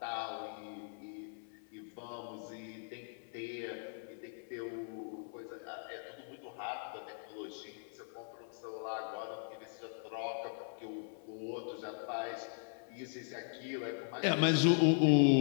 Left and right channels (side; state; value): right; silent; 52 dB below the other